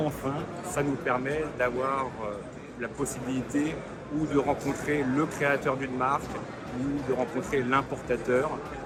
ça nous permet d'avoir la possibilité ou de rencontrer le créateur d'une marque ou de rencontrer l'importateur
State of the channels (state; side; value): identical; both; correlation 1.00